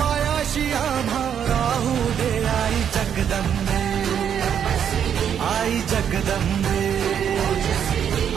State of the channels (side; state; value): left; quieter; 8.6 dB